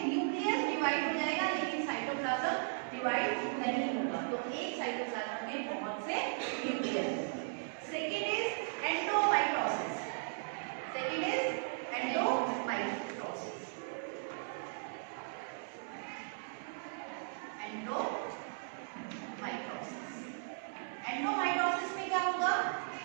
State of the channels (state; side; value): silent; left; 53 dB below the other